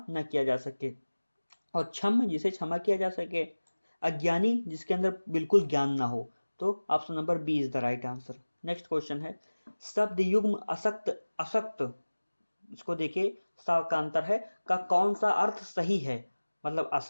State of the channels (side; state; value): both; inverted; correlation -1.00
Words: न किया जा सके और क्षम जिसे क्षमा किया जा सके। अज्ञानी जिसके अंदर बिल्कुल ज्ञान ना हो। तो option number B is the right answer. Next question है, शब्द युग्म असक्त, असक्त, इसको देखिए, सा का अंतर है, का कौन सा अर्थ सही है? मतलब